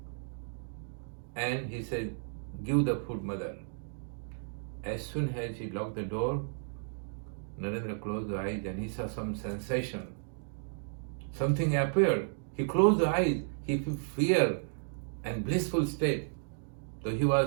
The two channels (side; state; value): left; silent; digital silence